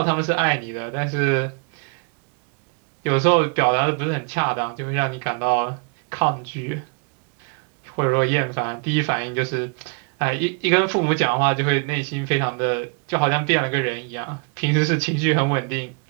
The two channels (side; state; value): left; quieter; 37.4 dB